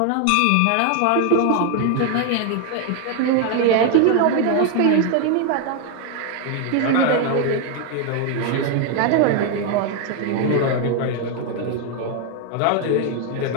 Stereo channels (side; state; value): both; different; correlation 0.01